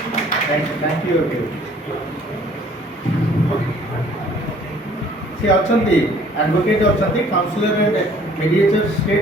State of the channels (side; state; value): both; normal; correlation 0.56